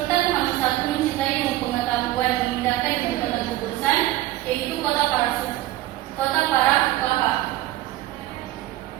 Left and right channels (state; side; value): quieter; left; 16.0 dB